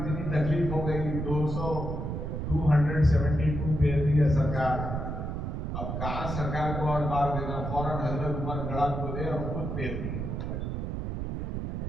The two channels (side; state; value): right; noise; rumble, 3 dB below the sound